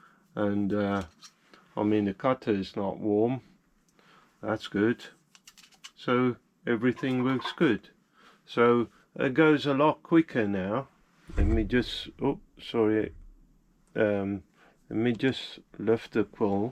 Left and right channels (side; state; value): both; identical; correlation 1.00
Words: And I mean, the cutter is not warm, that's good, so everything works good. So it goes a lot quicker now. Let me just, oh sorry, let me just lift the